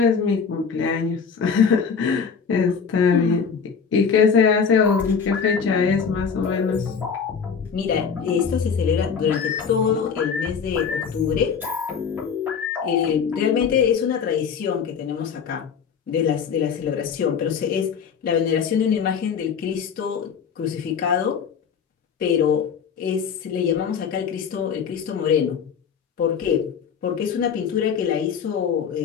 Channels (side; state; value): right; quieter; 6.4 dB